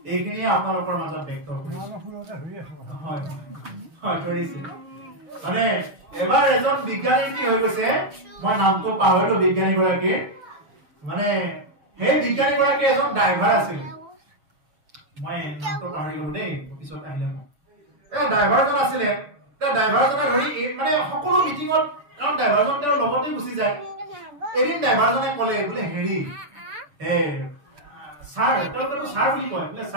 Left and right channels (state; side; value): late; left; 6.9 ms